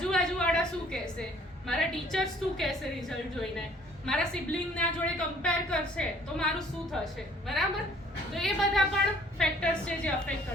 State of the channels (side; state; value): both; normal; correlation 0.57